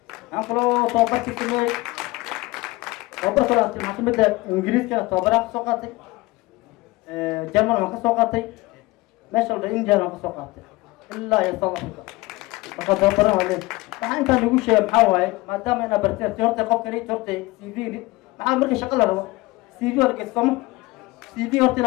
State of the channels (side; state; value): right; quieter; 21.3 dB